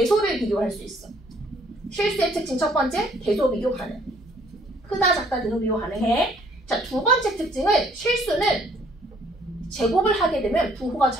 비교할 수 있어. 실수의 특징 첫 번째, 대소 비교 가능. 크다, 작다, 대소 비교 가능해. 자, 두 번째 특징은 실수는 제곱을 하게 되면 부호가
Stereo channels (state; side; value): normal; both; correlation 0.62